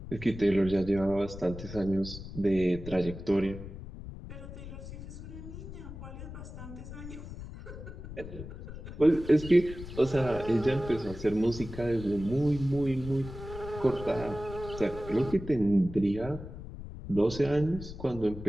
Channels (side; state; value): left; noise; rumble, 11 dB below the sound